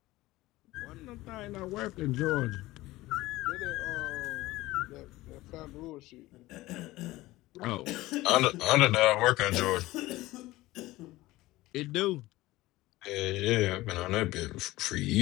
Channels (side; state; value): right; quieter; 18.2 dB